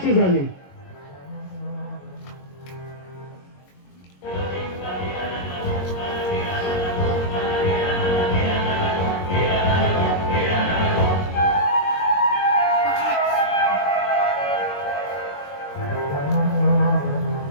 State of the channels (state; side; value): late; right; 22 ms